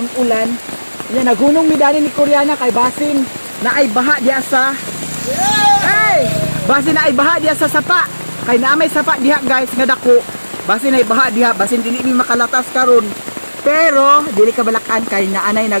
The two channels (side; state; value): both; inverted; correlation -1.00